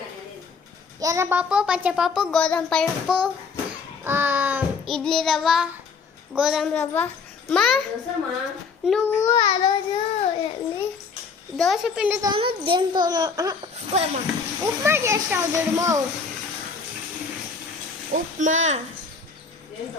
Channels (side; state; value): right; quieter; 5.2 dB